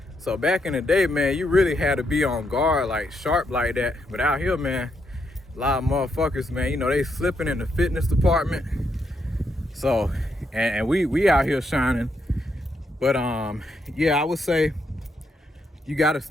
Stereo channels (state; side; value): normal; both; correlation 0.79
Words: So back in the day, man, you really had to be on guard, like sharp like that. But out here, man, a lot of motherfuckers, man, you know, they slipping in the fitness department. So, and we out here shining. But yeah, I would say you gotta